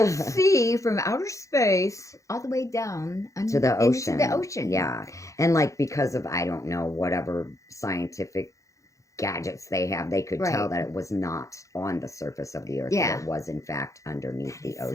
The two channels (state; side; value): late; right; 0.15 ms